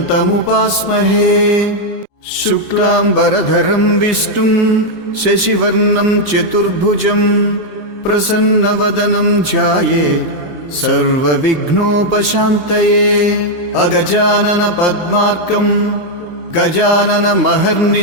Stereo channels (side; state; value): right; late; 26 ms